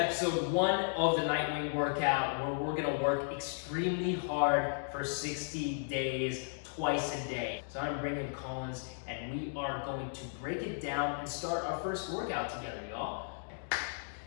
1 of the Nightwing Workout, where we're going to work extremely hard for 60 days, twice a day. So I'm bringing Kollins, and we are going to break it down and start our first workout together, y'all.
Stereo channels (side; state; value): right; silent; digital silence